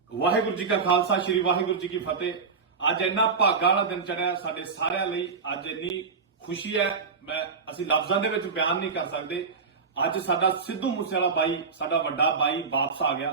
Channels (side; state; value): left; quieter; 5.1 dB